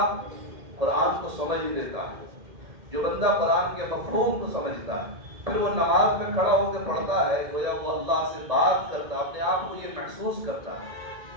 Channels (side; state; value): left; late; 1.8 ms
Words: قرآن کو سمجھ لیتا ہے، جو بندہ قرآن کے مفہوم کو سمجھتا ہے، پھر وہ نماز میں کھڑا ہو کے پڑھتا ہے، گویا وہ اللہ سے بات کرتا ہے، اپنے آپ کو یہ محسوس کرتا ہے.